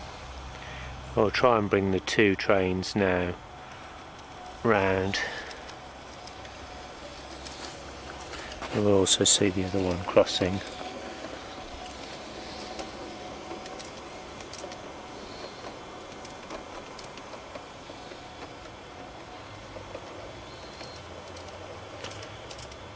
I'll try and bring the 2 trains now round. We'll also see the other one crossing.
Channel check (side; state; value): both; identical; correlation 1.00